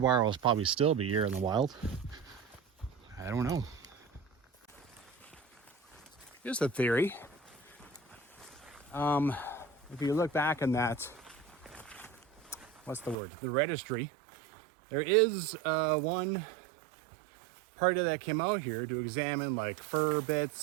wire will probably still be here in the wild. I don't know. Here's the theory. If you look back in that, what's the word? The registry. There is one party that came out here to examine like fur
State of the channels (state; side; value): drops out; left; at 13.2 s